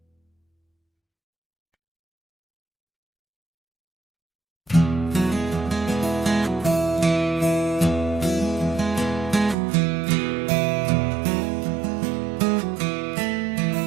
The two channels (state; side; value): drops out; left; at 9.6 s